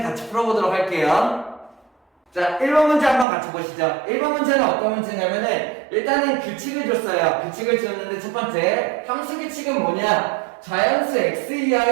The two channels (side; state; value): left; drops out; at 3.2 s